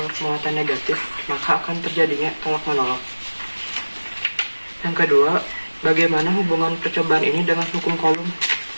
negatif, maka akan terjadinya tolak-menolak. Yang kedua, bagaimana hubungan percobaan ini dengan hukum Coulomb?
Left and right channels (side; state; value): both; inverted; correlation -1.00